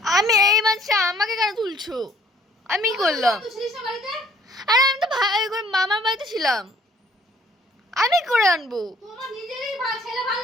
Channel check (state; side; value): normal; both; correlation 0.59